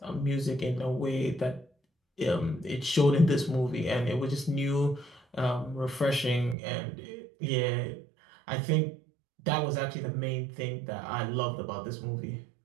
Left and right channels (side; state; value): left; drops out; at 6.6 s